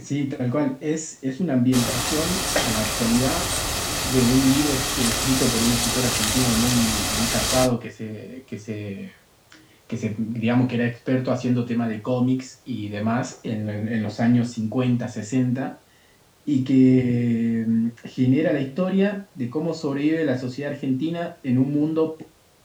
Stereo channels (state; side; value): identical; both; correlation 1.00